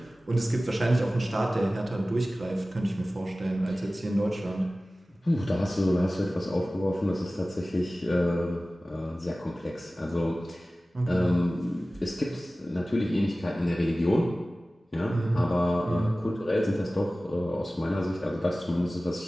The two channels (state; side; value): normal; both; correlation 0.97